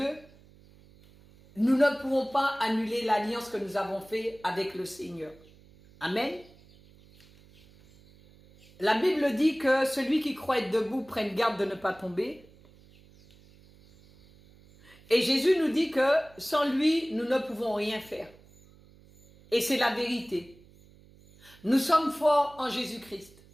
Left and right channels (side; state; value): right; noise; hum, 26 dB below the sound